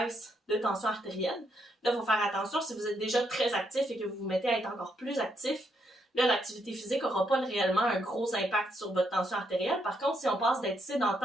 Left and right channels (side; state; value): both; normal; correlation 0.77